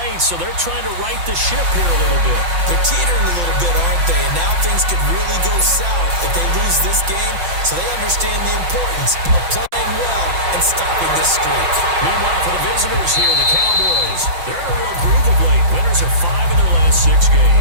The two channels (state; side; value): late; left; 5.8 ms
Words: so they're trying to right the ship here a little bit. They're teetering a little bit, aren't they? And now things could really go south if they lose this game, so they understand the importance of playing well and stopping this streak. Meanwhile, for the visitors here, the Cowboys, they're in a real groove of late. Winners of 5 of their last 6